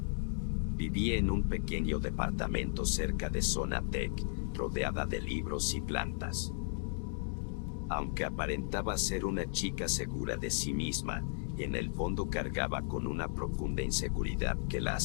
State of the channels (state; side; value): silent; right; 54 dB below the other